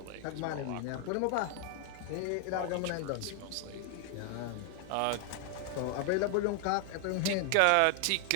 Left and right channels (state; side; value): different; both; correlation 0.00